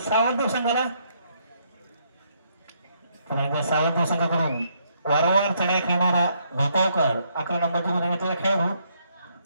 सावंत संघाला. सावंत संघाकडून वारंवार चढाई खेळणारा भोपावकर 11 नंबरची गुण घातलेला खेळाडू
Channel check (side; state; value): both; inverted; correlation -0.72